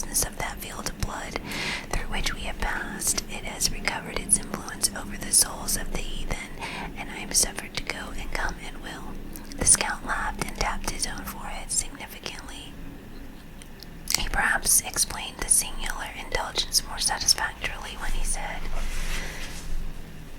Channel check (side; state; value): both; identical; correlation 1.00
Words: of that field of blood through which we have passed, it has recovered its influence over the souls of the heathen, and I am suffered to go and come at will. The scout laughed and tapped his own forehead significantly. He perhaps explained the singular indulgence more satisfactorily when he said,